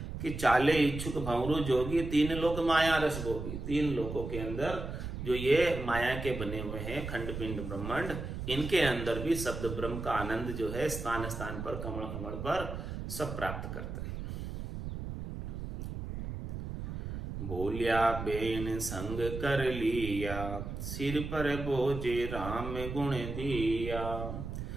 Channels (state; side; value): noise; right; rumble, 6 dB below the sound